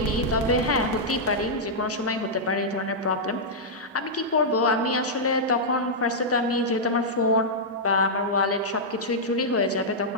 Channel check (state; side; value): normal; both; correlation -0.08